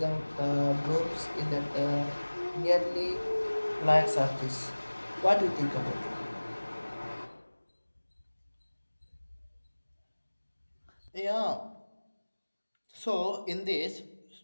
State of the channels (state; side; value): inverted; both; correlation -1.00